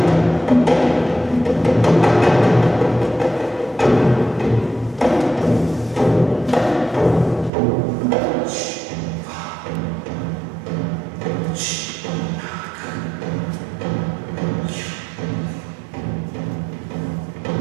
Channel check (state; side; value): drops out; left; at 7.5 s